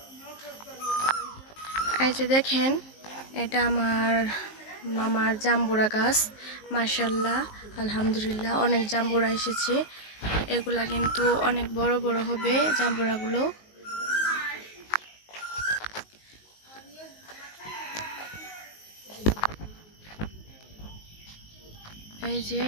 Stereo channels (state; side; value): late; right; 19 ms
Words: এই যে দেখেন, এটা আমার মামার জাম্বুরা গাছ। মাশাআল্লাহ, আলহামদুলিল্লাহ, অনেক জাম্বুরা এসেছে। এগুলা কিন্তু অনেক বড় বড় হবে জাম্বুরাগুলো। এই যে